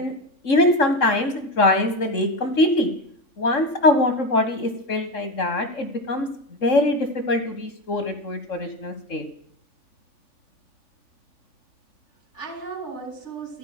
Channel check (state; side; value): late; right; 3.7 ms